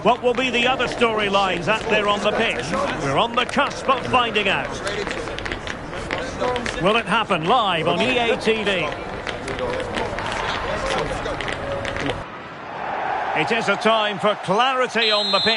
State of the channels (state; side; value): identical; both; correlation 1.00